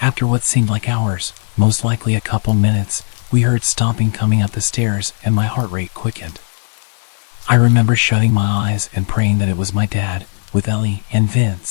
After what seemed like hours, most likely a couple minutes, we heard stomping coming up the stairs and my heart rate quickened. I remember shutting my eyes and praying that it was my dad, with Ellie and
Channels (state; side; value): silent; right; 56 dB below the other